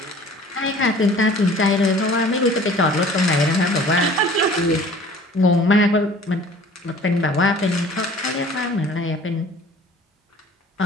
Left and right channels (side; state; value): both; normal; correlation 0.48